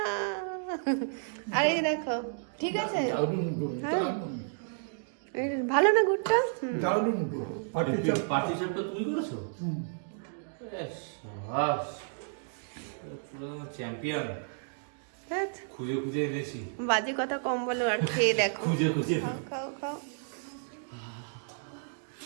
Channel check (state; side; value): silent; left; digital silence